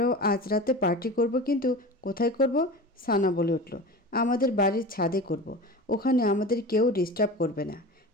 আজ রাতে পার্টি করব, কিন্তু কোথায় করব? সানা বলে উঠল, আমাদের বাড়ির ছাদে করব, ওখানে আমাদের কেউ ডিস্টার্ব করবে না।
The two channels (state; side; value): normal; both; correlation 0.32